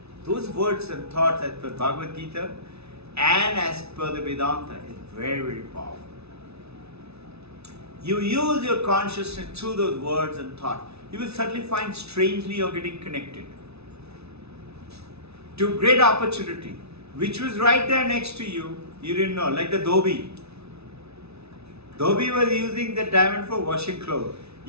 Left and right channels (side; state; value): left; late; 0.80 ms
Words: Those words and thoughts as per Bhagavad Gita and as per the Vedanta is very, very powerful. You use your consciousness through those words and thoughts. You will suddenly find strangely you're getting connected to great opportunity, which was right there next to you. You didn't know, like the Dhobi. Dhobi was using the diamond for washing clothes.